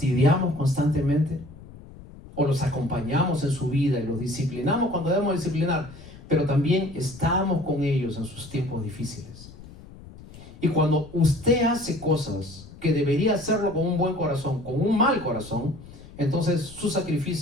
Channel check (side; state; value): left; noise; rumble, 18 dB below the sound